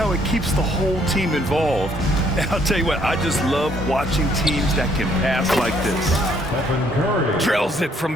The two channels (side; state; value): both; normal; correlation 0.66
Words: it keeps the whole team involved. And I'll tell you what, I just love watching teams that can pass like this. Drills it